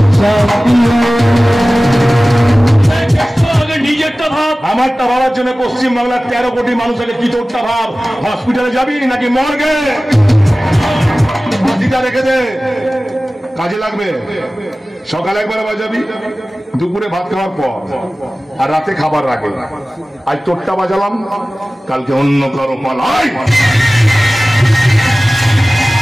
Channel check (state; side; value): normal; both; correlation 0.97